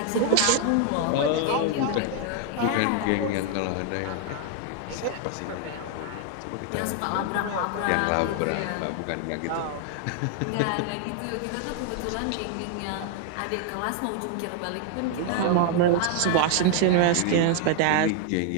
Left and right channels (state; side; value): different; both; correlation 0.00